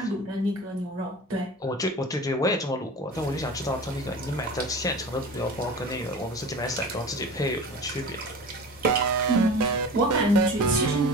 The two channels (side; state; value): both; normal; correlation 0.35